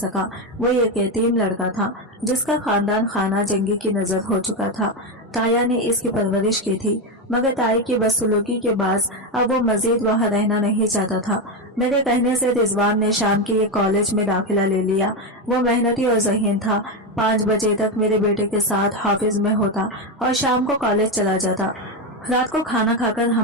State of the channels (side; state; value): both; normal; correlation 0.11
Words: वो एक यतीम लड़का था जिसका खानदान खाना जंगी की नजर हो चुका था। ताया ने इसकी परवरिश की थी, मगर ताई की बदसलूकी के बाद अब वो मजीद वहाँ रहना नहीं चाहता था। मेरे कहने से रिजवान ने शाम के एक कॉलेज में दाखिला ले लिया। वो मेहनती और ज़हीन था। 5 बजे तक मेरे बेटे के साथ हाफिज में होता और शाम को कॉलेज चला जाता। रात को खाना खाकर